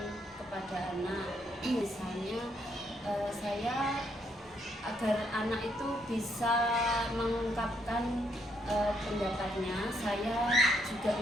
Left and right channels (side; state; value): both; normal; correlation 0.74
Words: kepada anak. Misalnya saya agar anak itu bisa mengungkapkan pendapatnya, saya juga